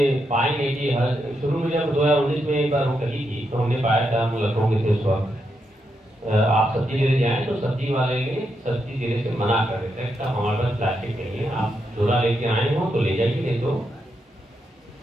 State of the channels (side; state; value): both; normal; correlation 0.82